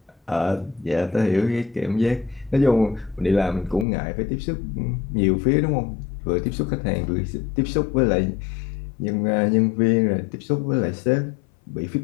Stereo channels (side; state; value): right; drops out; at 3.9 s